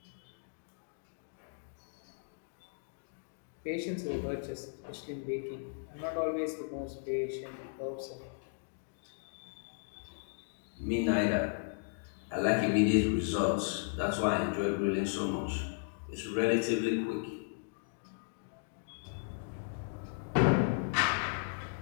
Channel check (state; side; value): silent; right; digital silence